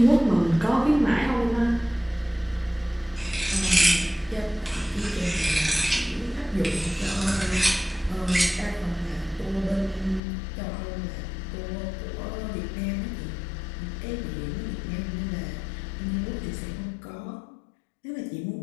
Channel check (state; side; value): drops out; right; at 10.2 s